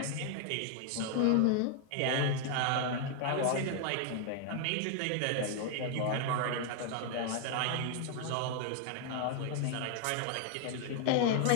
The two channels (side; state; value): both; different; correlation 0.00